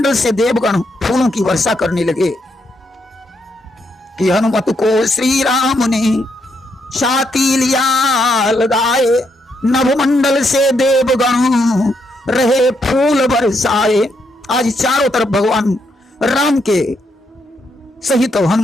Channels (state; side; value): normal; both; correlation 0.78